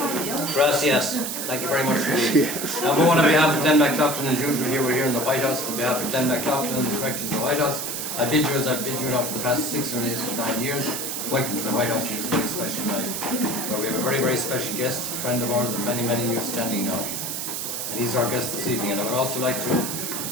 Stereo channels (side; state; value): right; noise; hiss, 4 dB below the sound